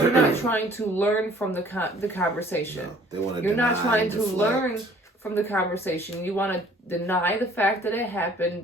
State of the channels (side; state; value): both; normal; correlation 0.55